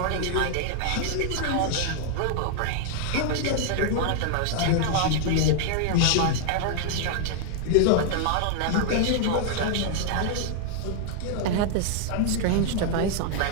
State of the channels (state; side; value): different; both; correlation 0.00